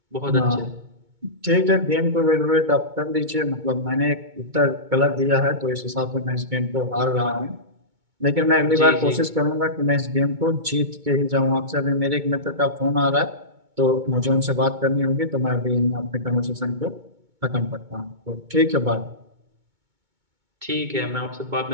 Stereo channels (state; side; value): late; left; 2.2 ms